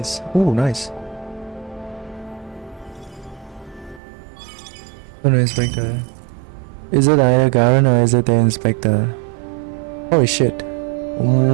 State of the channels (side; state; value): left; drops out; at 4.0 s